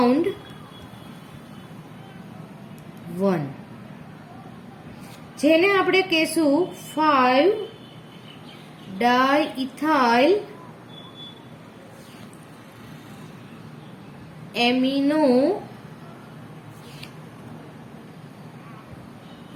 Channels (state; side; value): identical; both; correlation 1.00